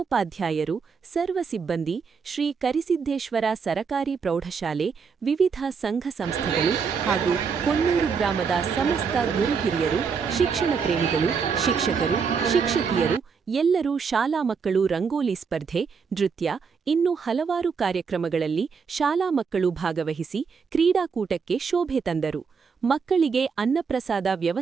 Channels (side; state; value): left; quieter; 5.8 dB